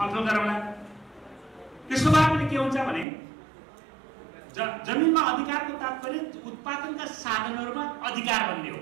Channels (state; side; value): drops out; left; at 3.1 s